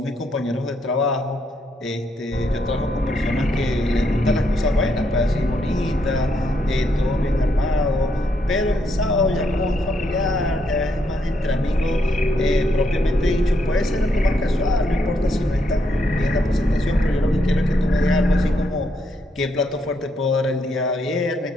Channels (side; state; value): both; normal; correlation 0.77